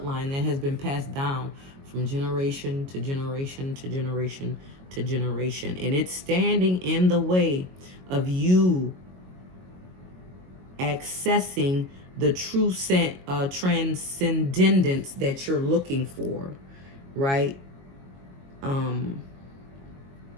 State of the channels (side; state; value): left; late; 22 ms